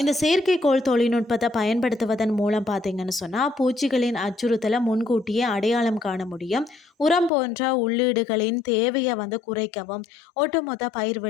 இந்த செயற்கைக்கோள் தொழில்நுட்பத்தை பயன்படுத்துவதன் மூலம் பார்த்தீங்கன்னு சொன்னால் பூச்சிகளின் அச்சுறுத்தலை முன்கூட்டியே அடையாளம் காண முடியும். உரம் போன்ற உள்ளீடுகளின் தேவையை குறைக்கவும் ஒட்டுமொத்த பயிர்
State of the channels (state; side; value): drops out; right; at 7.3 s